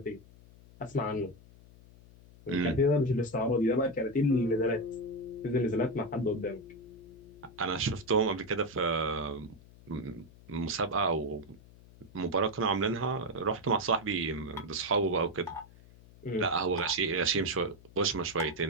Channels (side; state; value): left; noise; hum, 22 dB below the sound